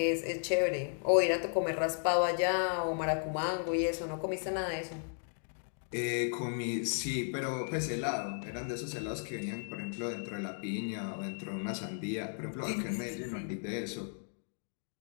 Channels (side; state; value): right; silent; 55 dB below the other